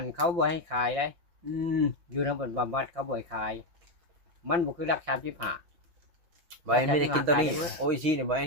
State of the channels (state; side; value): late; left; 5.8 ms